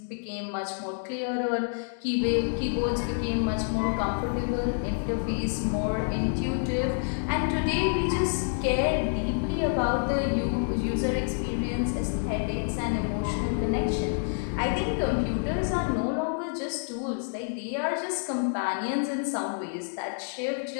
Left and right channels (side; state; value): right; silent; digital silence